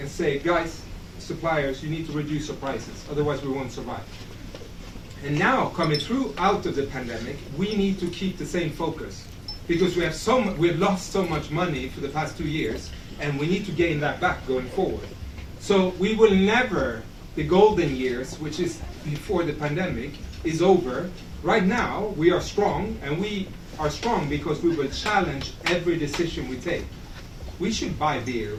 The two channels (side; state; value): both; identical; correlation 1.00